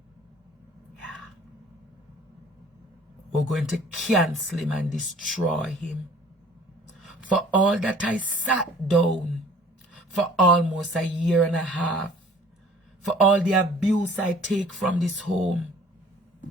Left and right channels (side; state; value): both; normal; correlation 0.52